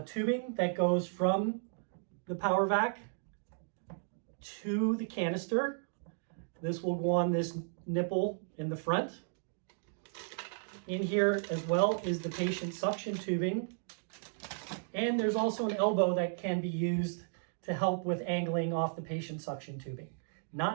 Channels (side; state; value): left; silent; digital silence